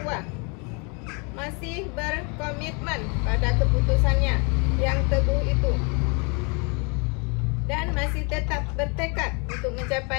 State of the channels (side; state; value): right; quieter; 33.0 dB